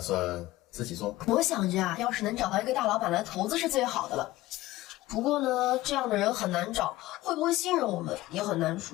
算自己做？我想着啊，要是能找到一个大老板来投资是最好的了。不过呢，这样的人很难找，会不会信任我们也很难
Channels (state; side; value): quieter; right; 17.3 dB